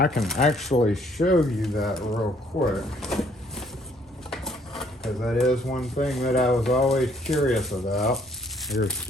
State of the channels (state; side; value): normal; both; correlation 0.64